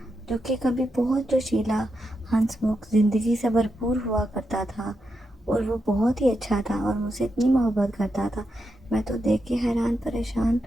جو کہ کبھی بہت جوشیلا، ہنس مکھ، زندگی سے بھرپور ہوا کرتا تھا، اور وہ بہت ہی اچھا تھا اور مجھ سے اتنی محبت کرتا تھا۔ میں تو دیکھ کے حیران پریشان،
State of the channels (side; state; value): both; normal; correlation 0.85